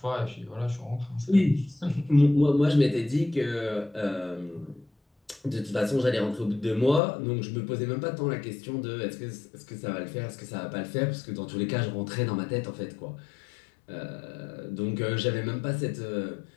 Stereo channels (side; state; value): right; drops out; at 7.0 s